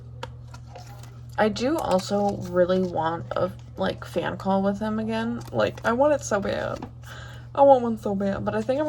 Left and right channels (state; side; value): identical; both; correlation 1.00